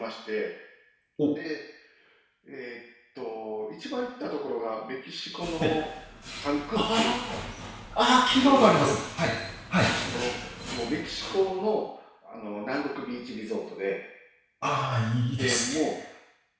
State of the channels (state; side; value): identical; both; correlation 1.00